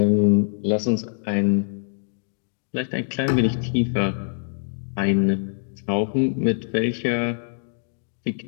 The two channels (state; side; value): silent; right; digital silence